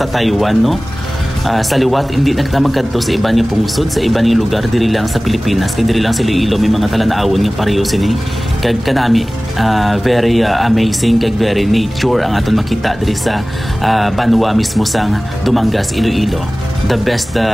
Taiwan, no? Sa liwat, hindi na kita magkadto sa iba nga pungsod, sa iba nga lugar, diri lang sa Pilipinas, kay diri lang sa Iloilo, may mga talanaawon nga pareho sini. Kag kanami, very amazing, kag very nature ang aton makita diri sa Banwa mismo sang Dumangas, Iloilo. The best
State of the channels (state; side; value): normal; both; correlation 0.98